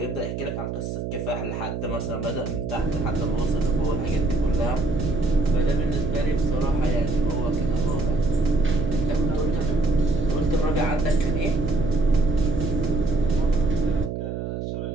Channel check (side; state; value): right; noise; hum, 5 dB below the sound